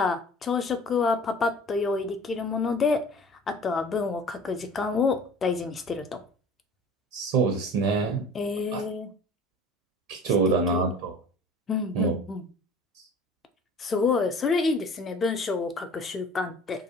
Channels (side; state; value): both; normal; correlation 0.43